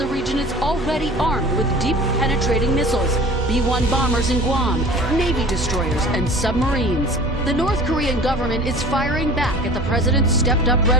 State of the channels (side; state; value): both; normal; correlation 0.42